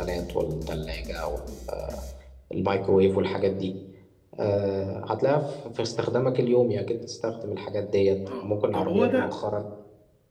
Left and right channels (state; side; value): identical; both; correlation 1.00